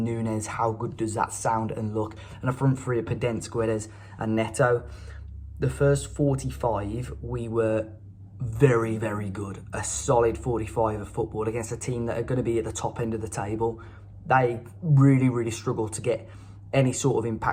How good does that sound and look? And a front three of Podence, Guedes and Neto. The first 45, we were very, very good. A solid 45 of football against a team that are going to be at the top end of the table. They really, really struggle to get any sort of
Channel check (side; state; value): both; identical; correlation 1.00